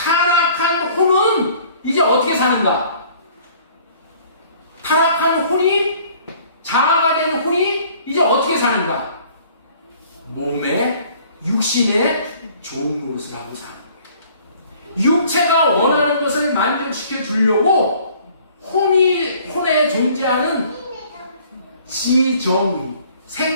혼은 이제 어떻게 사는가? 타락한 혼이 자아가 된 혼이 이제 어떻게 사는가? 몸에 육신의 좋은 노릇을 하고 사는 거예요. 육체가 원하는 것을 만족시켜 주려고 혼에 존재하는 지정,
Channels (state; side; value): inverted; both; correlation -0.55